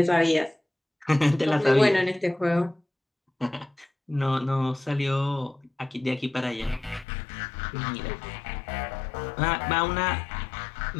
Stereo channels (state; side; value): drops out; right; at 7.1 s